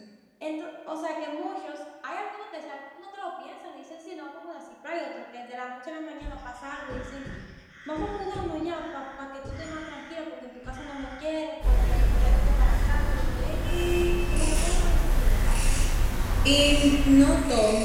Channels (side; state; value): both; identical; correlation 1.00